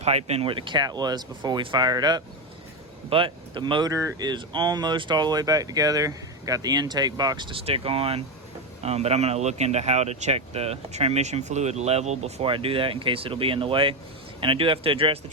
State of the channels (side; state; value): both; normal; correlation 0.11